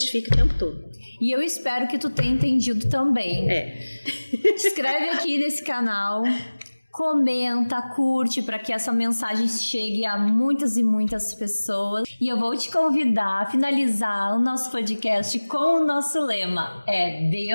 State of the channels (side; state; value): both; inverted; correlation -1.00